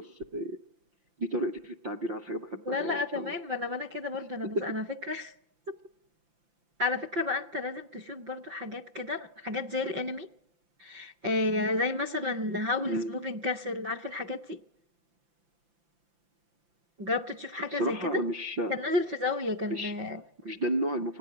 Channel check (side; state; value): left; late; 5.8 ms